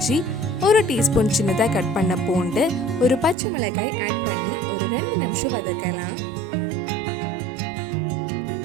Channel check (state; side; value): drops out; left; at 3.4 s